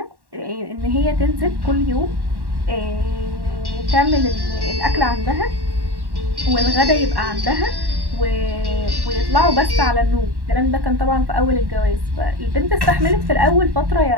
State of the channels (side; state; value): left; late; 1.1 ms